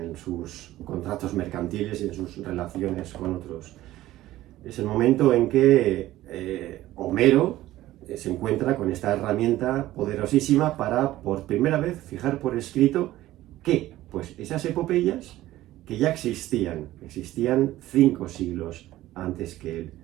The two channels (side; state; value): left; quieter; 15.4 dB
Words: sus contratos mercantiles y en sus relaciones con otros. Es el momento en que Homero se encuentra con esta herramienta poderosísima para, por primera vez, fijar por escrito que, pues, esas epopeyas que ya existían 5 siglos antes que él.